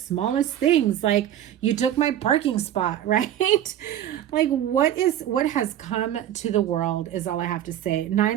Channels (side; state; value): left; quieter; 11.4 dB